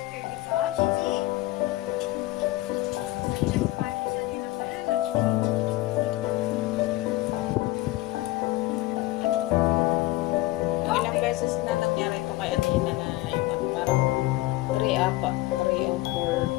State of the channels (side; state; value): right; quieter; 18.1 dB